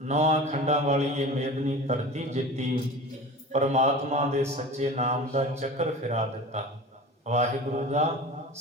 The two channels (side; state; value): both; normal; correlation 0.35